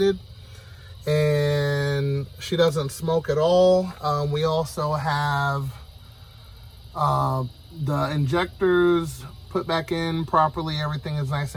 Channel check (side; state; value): both; identical; correlation 1.00